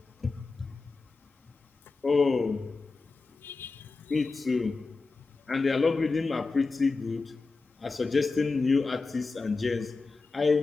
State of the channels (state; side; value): quieter; right; 4.0 dB